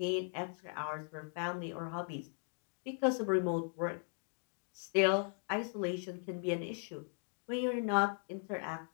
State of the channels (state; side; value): silent; right; 52 dB below the other